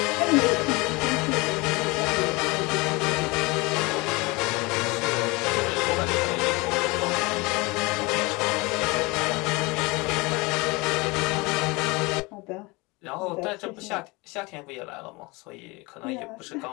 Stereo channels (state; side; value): quieter; right; 25.0 dB